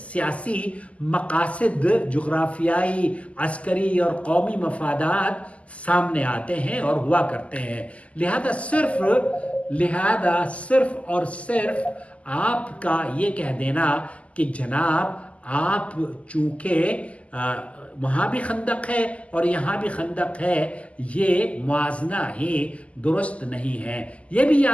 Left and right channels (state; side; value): late; right; 0.064 ms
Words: مقاصد، جغرافیائی، عسکری اور قومی مفادات سامنے آتے ہیں اور ہوا کرتے ہیں۔ لہذا صرف اور صرف آپ کا یہ کہہ دینا کہ جناب آپ چونکہ وہاں بھی خندق ہے اور یہاں بھی خندق ہے، یہ موازنہ ہی درست نہیں ہے۔ یہ بھی